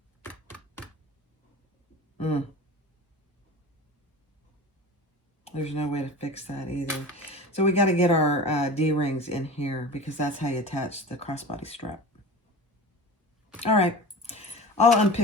there's no way to fix that either. So we got to get our D-rings in here because that's how you attach the crossbody strap. All right, I'll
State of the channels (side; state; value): both; normal; correlation 0.34